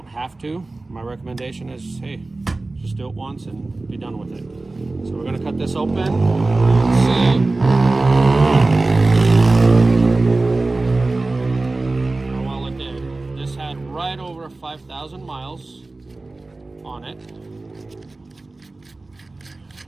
have to. My recommendation is, hey, just do it once and be done with it. So we're gonna cut this open. Let's see how well it did. This had right over 5,000 miles on it.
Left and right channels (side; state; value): left; quieter; 3.2 dB